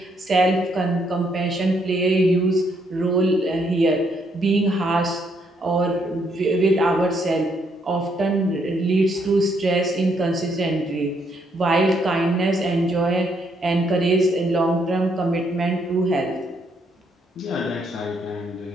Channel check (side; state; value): both; normal; correlation 0.72